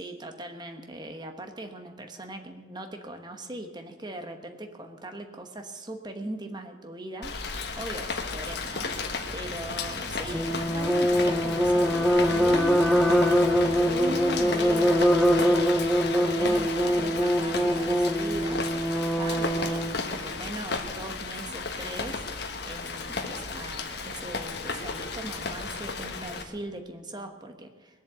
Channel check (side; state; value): both; normal; correlation 0.77